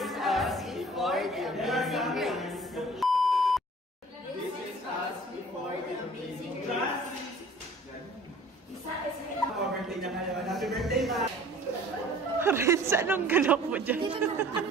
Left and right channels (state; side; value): normal; both; correlation 0.49